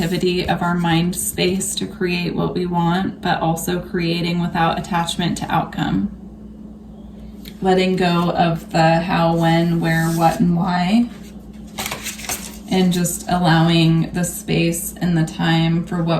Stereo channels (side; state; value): both; identical; correlation 1.00